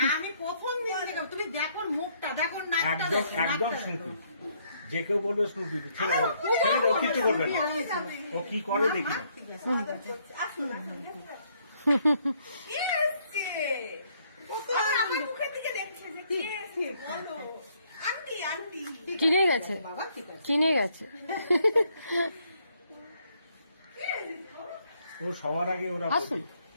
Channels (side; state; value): both; inverted; correlation -0.69